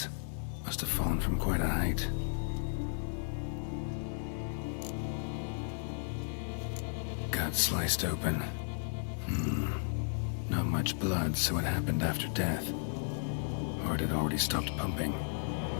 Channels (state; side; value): silent; right; 55 dB below the other